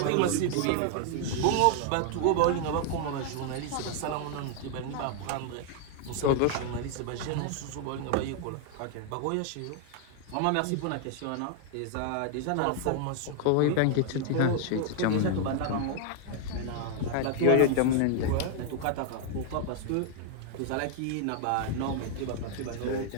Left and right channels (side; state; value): both; different; correlation 0.00